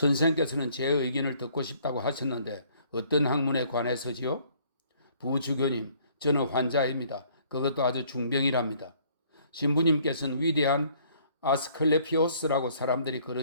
제 의견을 듣고 싶다고 하셨는데 어떤 학문에 관해서지요? 부주교님, 저는 환자입니다. 그것도 아주 중병이랍니다. 신부님께서는 위대한 아스클레피오스라고 사람들이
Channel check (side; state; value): both; inverted; correlation -0.61